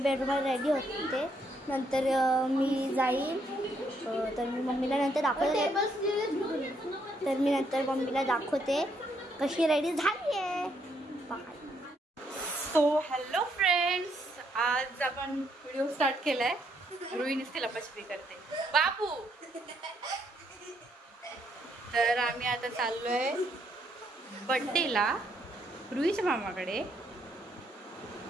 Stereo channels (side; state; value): both; normal; correlation 0.73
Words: रेडी होते. नंतर मी जाईल, तर मी मम्मीला नंतर दाखवते. तर मी नंतर मम्मीला दाखवते कशी रेडी झाली आहे. सो हॅलो फ्रेंड्स, आज आपण व्हिडिओ स्टार्ट केलाय. रुईनीच लपाछपी करते बाबू. तर आम्ही आता चाललोय बर्थडेला रुईच्या मामाकडे.